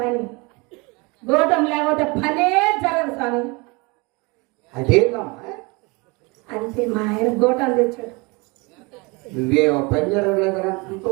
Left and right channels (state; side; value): quieter; left; 27.4 dB